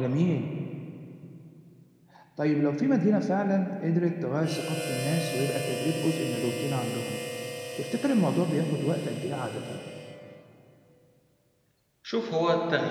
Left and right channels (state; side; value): identical; both; correlation 1.00